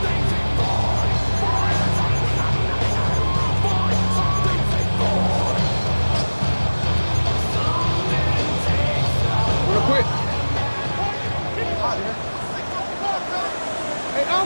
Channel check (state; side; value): inverted; both; correlation -1.00